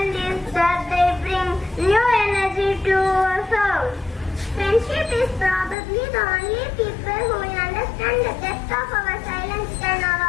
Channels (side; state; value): right; drops out; at 5.8 s